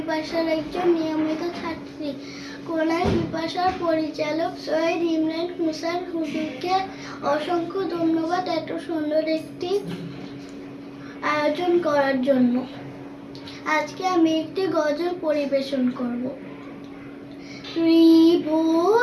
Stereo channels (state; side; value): identical; both; correlation 1.00